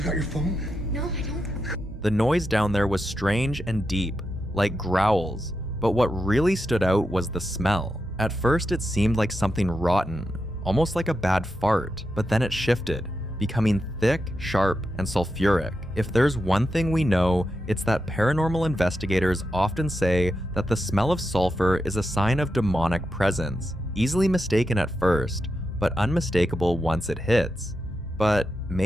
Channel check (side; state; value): both; normal; correlation 0.87